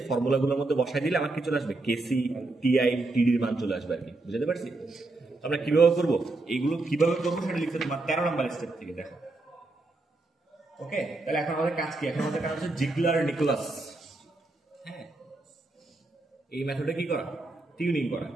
ফর্মুলাগুলোর মধ্যে বসাই দিলে আমার কি চলে আসবে, কেসি, টিআই, টিডির মান চলে আসবে আর কি। বুঝতে পারছি? আমরা কিভাবে করবো, এইগুলো কিভাবে করবো সেটা লিখতে তোমার 13 নম্বর স্টেপ থেকে দেখো। ওকে, তাহলে এখন আমাদের কাজ কি? এখন আমাদের কাজ হচ্ছে জিগলার নিকোলাস। হ্যাঁ, এই মেথডে কি করা, টিউনিং করা।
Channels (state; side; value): quieter; left; 3.1 dB